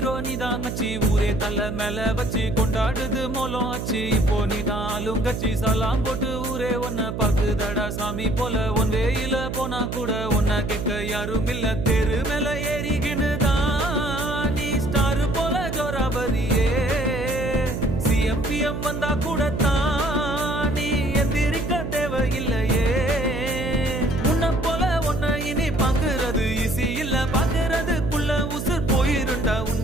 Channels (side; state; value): right; noise; hum, 5 dB below the sound